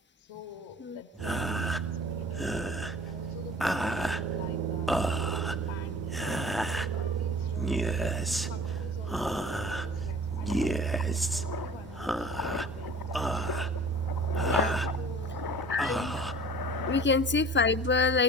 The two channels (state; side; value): normal; both; correlation 0.44